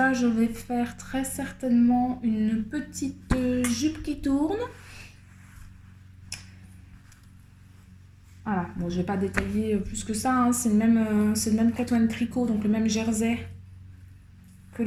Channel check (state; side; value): identical; both; correlation 1.00